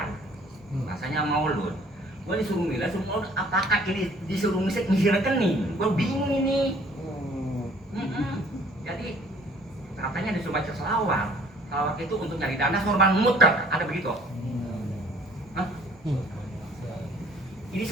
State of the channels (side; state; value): both; normal; correlation 0.55